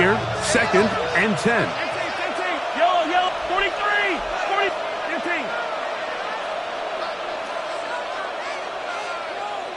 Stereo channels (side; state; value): both; identical; correlation 1.00